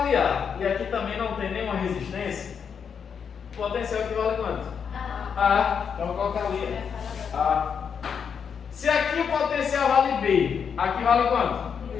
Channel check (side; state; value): right; quieter; 6.9 dB